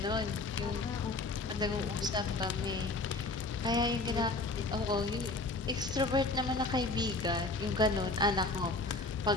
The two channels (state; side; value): quieter; right; 3.3 dB